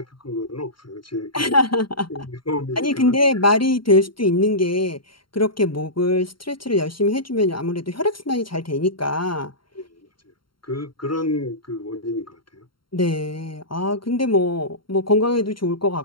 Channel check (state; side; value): late; right; 0.73 ms